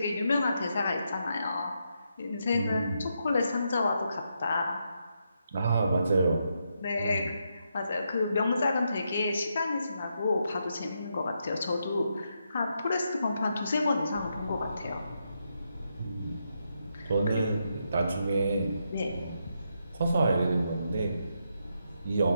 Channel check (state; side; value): inverted; both; correlation -0.81